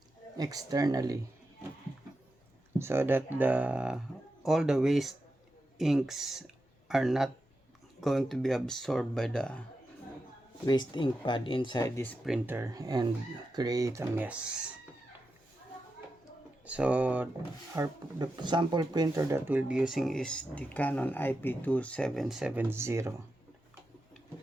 externally, so that all the waste inks are not going to be absorbed by the waste ink pad inside this printer and create a mess. So the sample printer that we'll be using is the Canon IP2770.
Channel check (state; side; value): normal; both; correlation 0.89